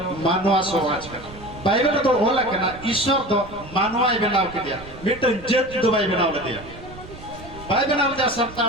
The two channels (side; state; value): right; noise; rumble, 16 dB below the sound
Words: मानव समाज का बाइबल तो ओला कना ईश्वर तो मानवाई बनाव के दिया मिटन जत दुबाई बनाव दिया बाई बनाव जा